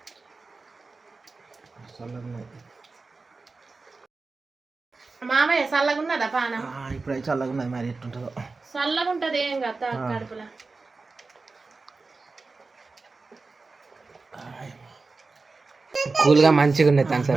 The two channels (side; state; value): left; quieter; 3.9 dB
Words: మామయ్య చల్లగా ఉన్నదా పానం ఇప్పుడు చల్లగా ఉన్నది మరి ఎట్టుంటుందో చల్లగా ఉంటది ఏం కదా కడుపులో కూల్గా మంచిగా ఉన్నది